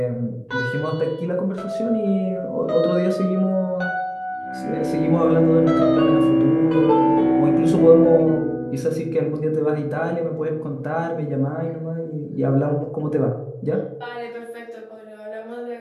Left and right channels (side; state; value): both; identical; correlation 1.00